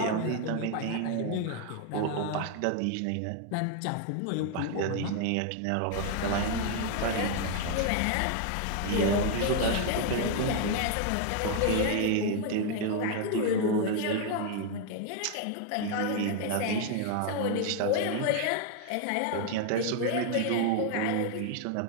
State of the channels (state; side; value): different; both; correlation 0.00